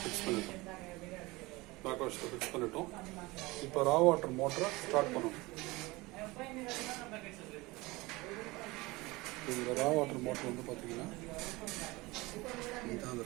ஃபிக்ஸ் பண்ணிட்டோம். பேக் வாஷில் ஃபிக்ஸ் பண்ணிட்டோம். இப்போ ரா வாட்டர் மோட்டரை ஸ்டார்ட் பண்ணணும். இந்த ரா வாட்டர் மோட்டர் வந்து பார்த்தீங்கன்னா இதுதான் அந்த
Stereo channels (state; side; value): quieter; left; 22.3 dB